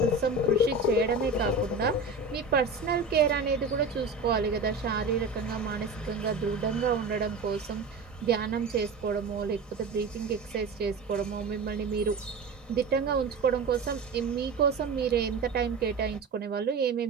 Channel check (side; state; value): left; quieter; 3.8 dB